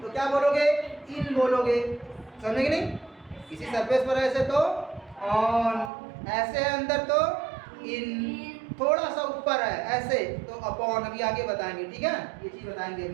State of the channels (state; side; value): drops out; left; at 5.9 s